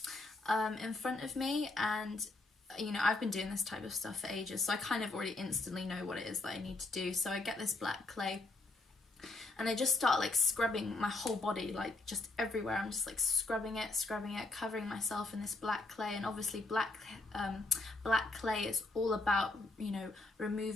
in front of me, and you know, I've been doing this type of stuff for ages, so I kind of already instantly know what it is that I need to do. So I get this black clay, and I just start like scrubbing my whole body, like just everywhere. I'm just like scrubbing it, covering myself in this black clay. And obviously black clay is all about, you know,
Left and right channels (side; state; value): right; quieter; 3.1 dB